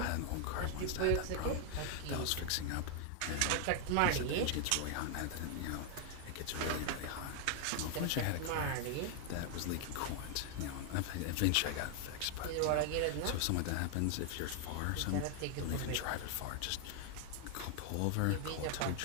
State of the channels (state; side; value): different; both; correlation 0.00